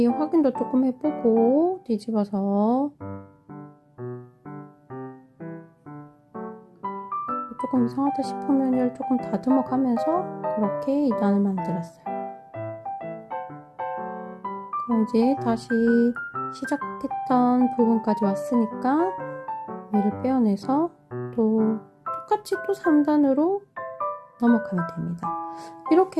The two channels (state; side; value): identical; both; correlation 1.00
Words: 확인도 조금 해보고 뒤집어서 조금 이상하다 싶으면 얘를 조금 다듬어 가면서 그렇게 2단을 만들었어요. 그럼 이제 다시 시작했던 부분까지 왔으니까 얘를 빼어내서 또 똑같이 또 3단으로 넘어가면 됩니다.